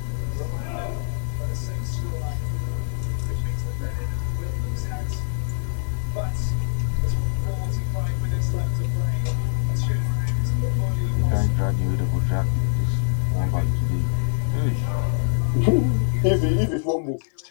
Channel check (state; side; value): silent; right; 63 dB below the other